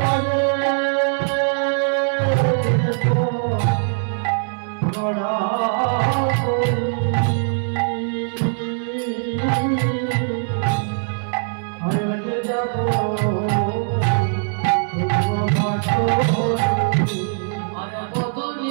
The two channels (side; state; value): left; silent; digital silence